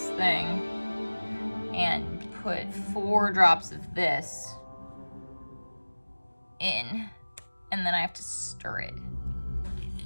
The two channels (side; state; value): both; inverted; correlation -1.00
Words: thing and put 4 drops of this in, and then I have to stir it.